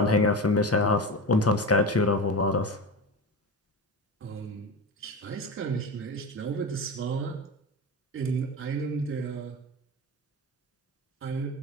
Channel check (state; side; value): normal; both; correlation 0.25